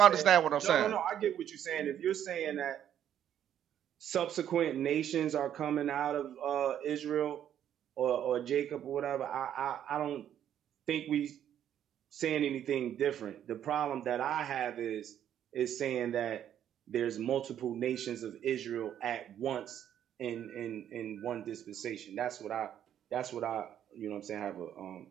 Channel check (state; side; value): quieter; left; 10.2 dB